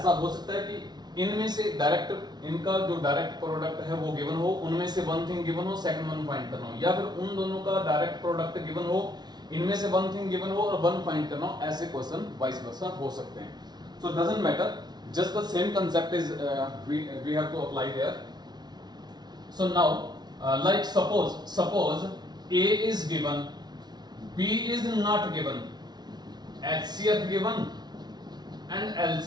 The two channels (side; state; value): left; late; 0.20 ms